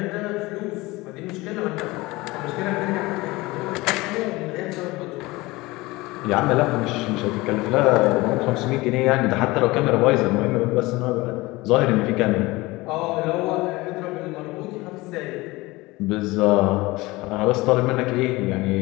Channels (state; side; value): quieter; right; 21.3 dB